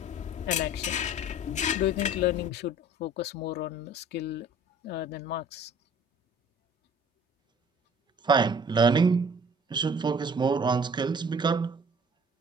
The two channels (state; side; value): normal; both; correlation 0.50